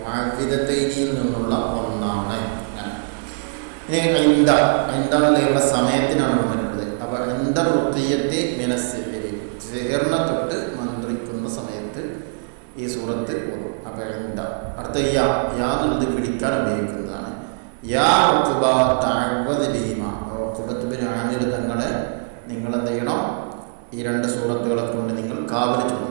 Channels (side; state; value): left; silent; digital silence